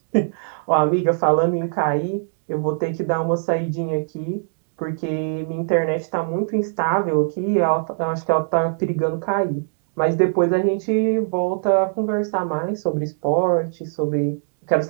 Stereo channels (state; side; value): silent; left; digital silence